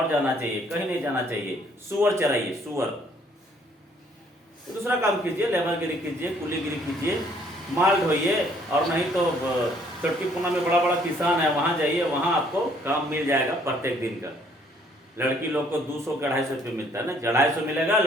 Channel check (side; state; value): both; normal; correlation 0.63